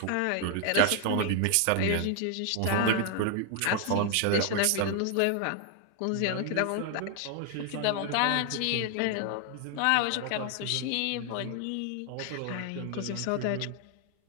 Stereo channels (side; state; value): both; different; correlation 0.00